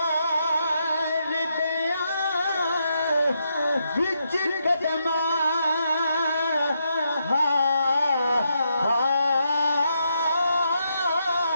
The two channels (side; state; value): both; inverted; correlation -0.80